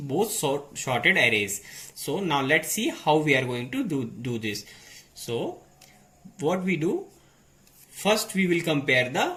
sorted arrays. So now let's see how we are going to do this. So what we do, first we will compare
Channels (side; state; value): both; identical; correlation 1.00